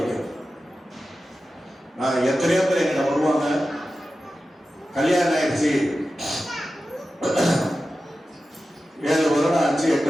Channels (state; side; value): normal; both; correlation 0.93